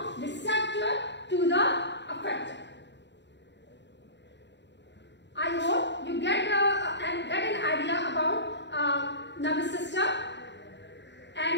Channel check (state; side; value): late; right; 0.52 ms